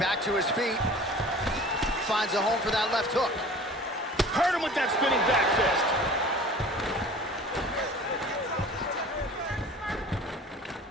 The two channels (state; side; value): normal; both; correlation 0.43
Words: to his feet. Finds a home for that left hook. Hurt him with that spinning back fist.